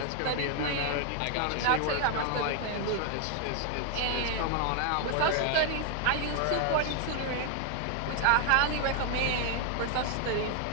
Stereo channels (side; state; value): both; different; correlation 0.01